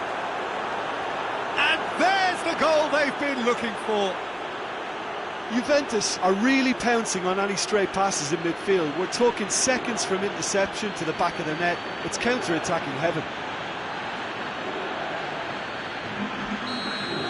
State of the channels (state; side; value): identical; both; correlation 1.00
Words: And there's the goal they've been looking for. Juventus are really pouncing on any stray passes in midfield. We're talking seconds from interception to the back of the net. It's counter-attacking heaven.